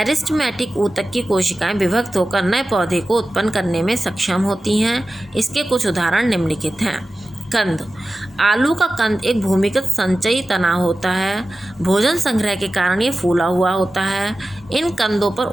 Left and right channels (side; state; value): both; normal; correlation 0.94